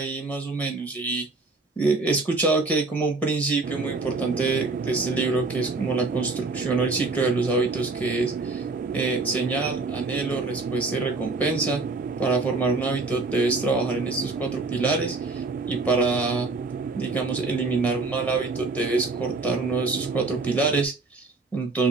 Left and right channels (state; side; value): quieter; left; 3.6 dB